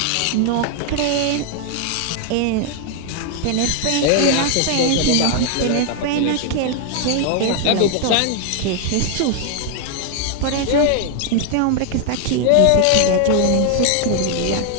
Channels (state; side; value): different; both; correlation 0.00